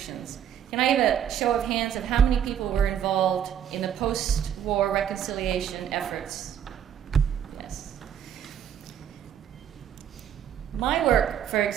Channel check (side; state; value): left; quieter; 9.3 dB